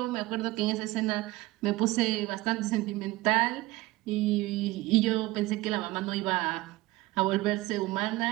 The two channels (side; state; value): left; quieter; 19.2 dB